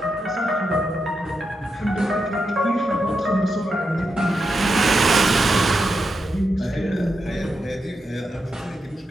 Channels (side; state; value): both; normal; correlation 0.85